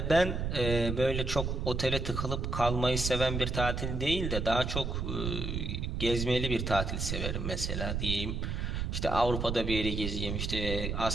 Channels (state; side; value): noise; right; rumble, 2 dB below the sound